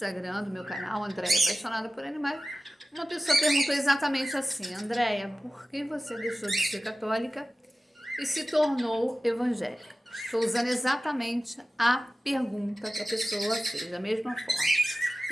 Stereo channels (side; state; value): both; normal; correlation 0.96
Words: do meu canal Andréia Apaixonada por Animais. Uma pessoa perguntou exatamente assim: Andréia, por que você deixou de ser católica e se tornou evangélica? Estou usando exatamente a pergunta que a pessoa fez, da mesma forma.